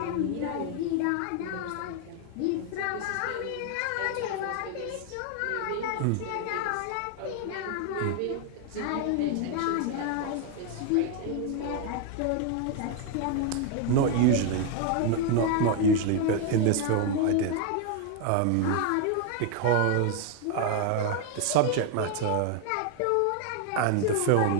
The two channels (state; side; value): different; both; correlation 0.00